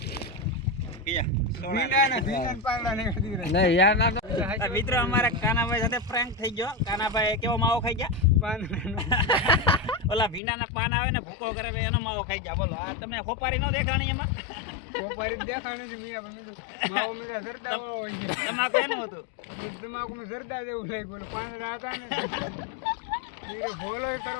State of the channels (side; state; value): right; drops out; at 10.4 s